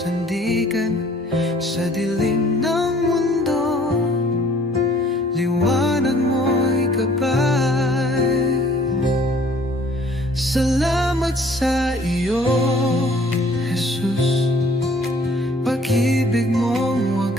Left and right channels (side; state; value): both; normal; correlation 0.56